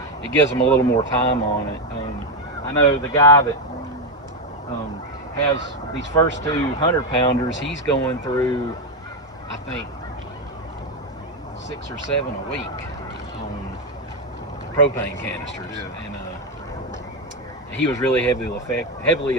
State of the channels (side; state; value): both; normal; correlation 0.07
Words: it gives them a little more time on it. I know the guy that has these first 2 100-pounders, he's going through, I think, 6 or 7 a week on propane canisters. Yeah. And he was really heavily